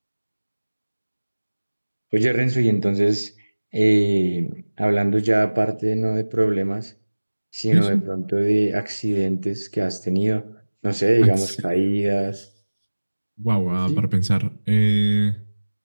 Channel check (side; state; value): both; inverted; correlation -1.00